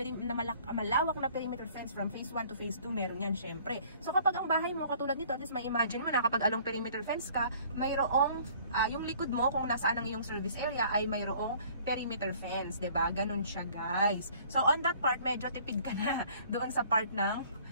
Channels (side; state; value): both; inverted; correlation -0.54